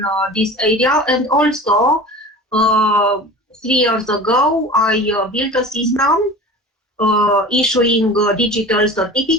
this area, and also 3 years ago I built a system issuing digital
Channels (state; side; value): normal; both; correlation 0.37